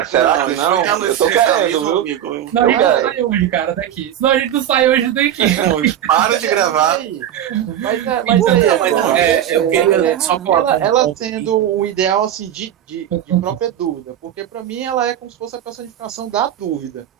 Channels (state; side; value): quieter; left; 10.7 dB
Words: Será que não? Eu tô querendo, viu? Não, a gente não sai hoje, cara, daqui. Senão a gente não sai hoje daqui. Para de gravar. eu queria só ela tendo o ideal assim de própria dúvida, porque pra mim ela é como se fosse a personificação da dúvida.